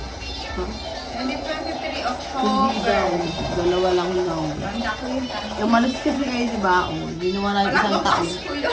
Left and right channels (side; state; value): both; identical; correlation 1.00